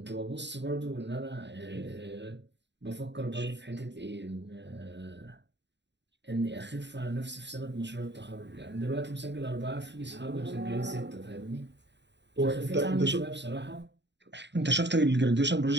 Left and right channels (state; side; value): late; left; 0.51 ms